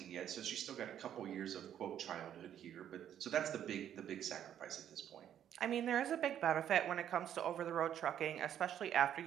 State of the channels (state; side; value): quieter; left; 10.1 dB